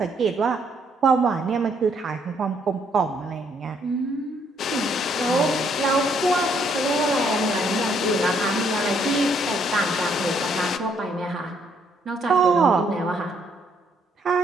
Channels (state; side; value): normal; both; correlation 0.69